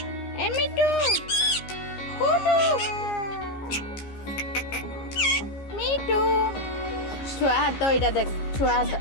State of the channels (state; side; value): late; right; 15 ms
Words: এ মিট্টু, কুটু, মিট্টু। ছুয়া হাত এইটা দেখ, ছুয়া হাত